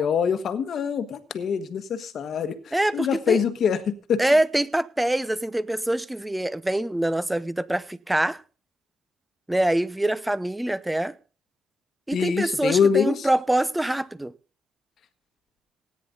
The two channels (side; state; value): both; normal; correlation 0.88